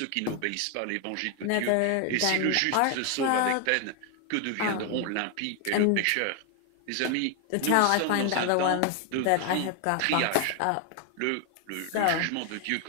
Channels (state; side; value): different; both; correlation 0.00